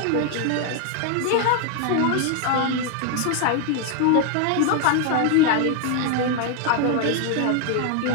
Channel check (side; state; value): both; different; correlation 0.00